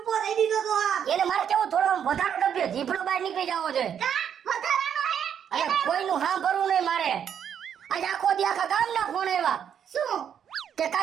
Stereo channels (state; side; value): quieter; left; 8.5 dB